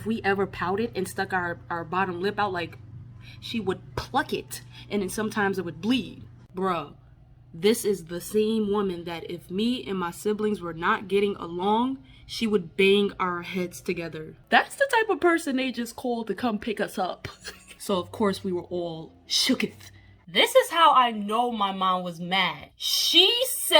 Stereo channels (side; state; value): both; identical; correlation 1.00